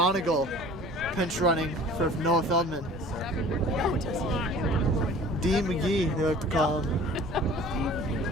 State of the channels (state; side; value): normal; both; correlation 0.46